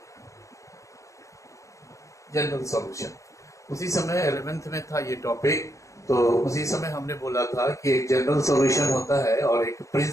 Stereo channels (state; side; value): late; right; 0.15 ms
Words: जनरल सॉल्यूशन उसी समय 11th में था ये टॉपिक, तो उसी समय हमने बोला था कि एक जनरल सॉल्यूशन होता है और एक